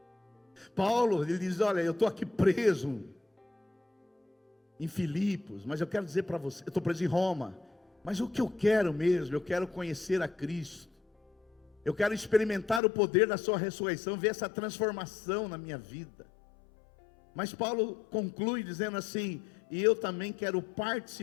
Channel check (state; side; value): drops out; right; at 12.8 s